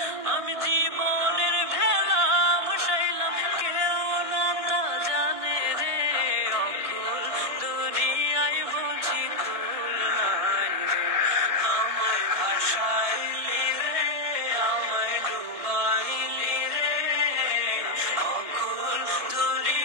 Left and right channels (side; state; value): left; late; 1.8 ms